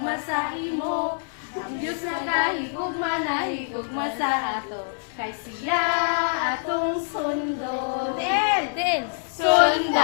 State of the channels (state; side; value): silent; right; 62 dB below the other